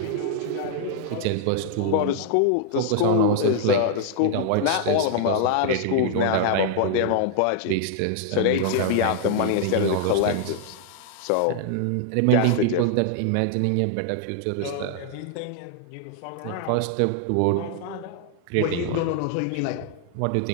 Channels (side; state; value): both; different; correlation 0.00